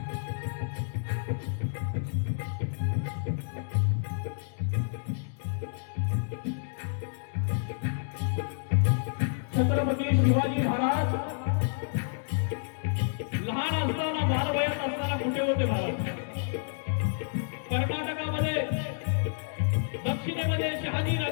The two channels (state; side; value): silent; right; digital silence